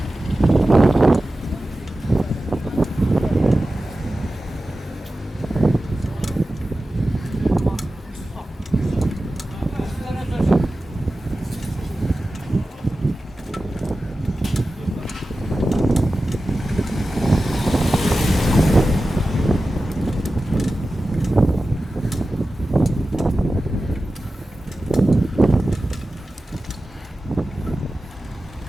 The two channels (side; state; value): both; normal; correlation 0.94